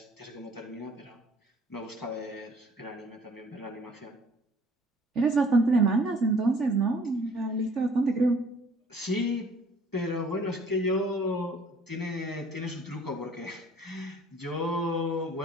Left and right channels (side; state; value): both; normal; correlation 0.55